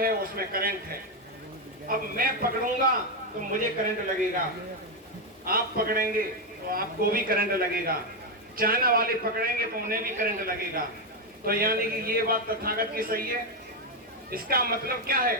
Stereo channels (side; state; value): both; normal; correlation 0.05